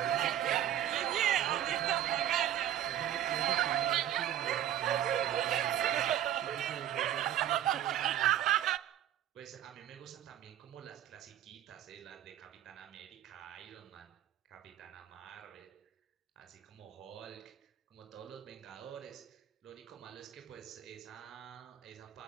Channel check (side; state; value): left; quieter; 11.4 dB